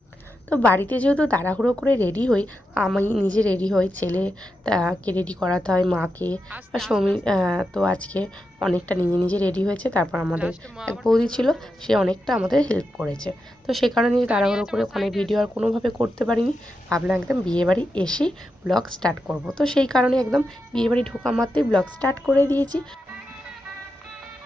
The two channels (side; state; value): both; normal; correlation 0.87